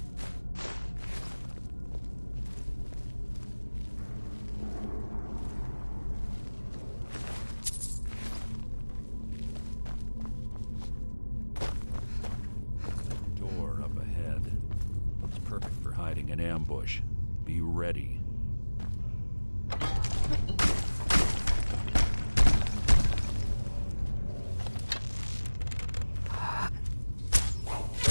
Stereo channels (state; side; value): inverted; both; correlation -1.00